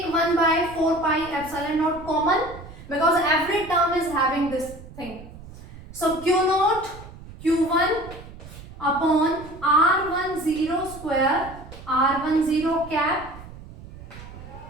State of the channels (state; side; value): noise; right; rumble, 16 dB below the sound